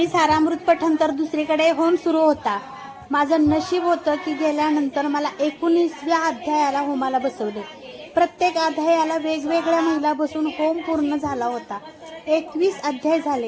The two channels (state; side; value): identical; both; correlation 1.00